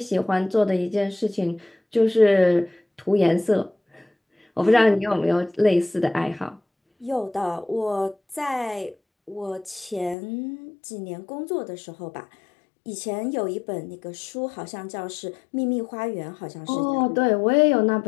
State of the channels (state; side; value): drops out; right; at 10.2 s